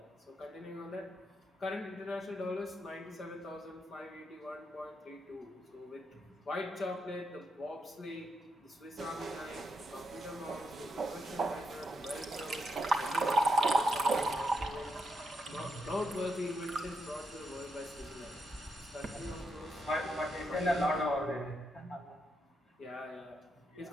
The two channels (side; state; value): both; normal; correlation 0.81